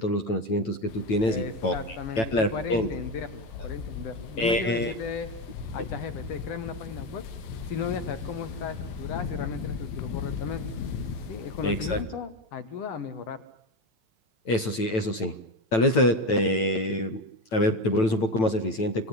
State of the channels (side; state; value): right; late; 9.0 ms